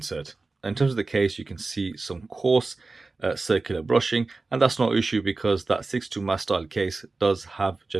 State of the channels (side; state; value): left; quieter; 3.6 dB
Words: In terms of the case, you can see some coarse circular brushing, and that's no issue because that 62Mas style case does have